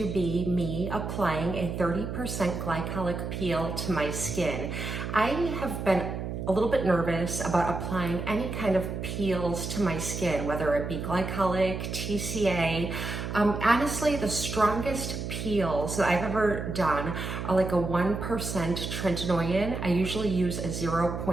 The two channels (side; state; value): right; noise; hum, 5 dB below the sound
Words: be me applying a 30% glycolic peel to my skin. I have been a little bit nervous about applying any kind of peels to my skin, whether it be glycolic, TCA. Honestly, the strongest peels that I've ever done are like a 1% tretinoin. I usually use a